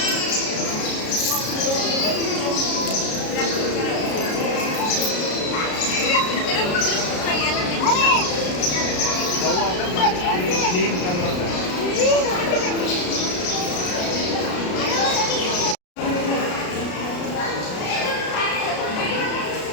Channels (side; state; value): right; late; 33 ms